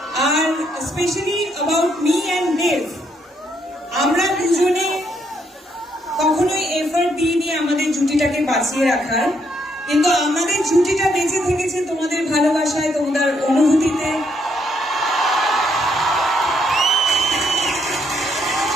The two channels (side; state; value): both; normal; correlation 0.73